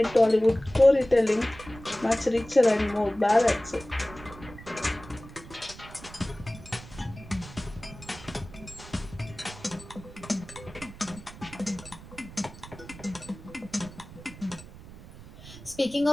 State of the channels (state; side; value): noise; right; rumble, 17 dB below the sound